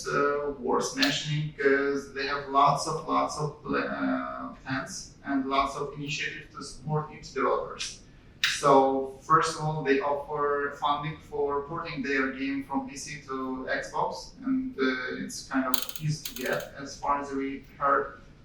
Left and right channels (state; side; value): identical; both; correlation 1.00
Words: worth mentioning because they have lots of plans and lots of initiatives to support indie developers. So first of all, they offer funding for porting their game from PC to Xbox, and it's kind of easy to get as far as we heard.